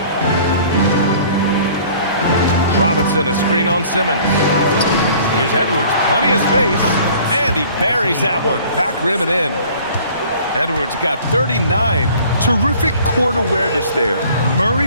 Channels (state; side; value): inverted; both; correlation -0.51